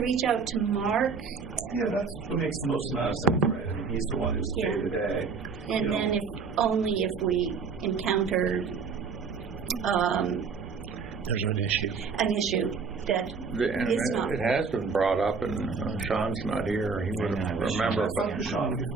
reach out to Mark? Yeah, that's what makes the most amount of sense, right? He's the one who's day to day. And then if we encounter there's an issue that is not. It has been brought up, and Sean's not here. He would remember. But Sean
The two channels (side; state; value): left; quieter; 5.2 dB